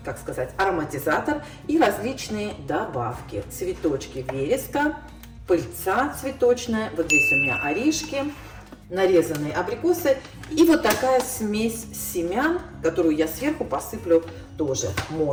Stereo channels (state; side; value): identical; both; correlation 1.00